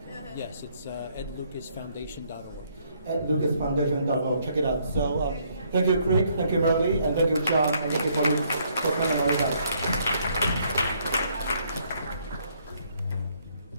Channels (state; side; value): inverted; both; correlation -0.68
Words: Yes, it's edlucasfoundation.org. edlucasfoundation.org. Check it out. So thank you, Craig. Thank you, Merilee. And thank you, John. And thank you for coming on.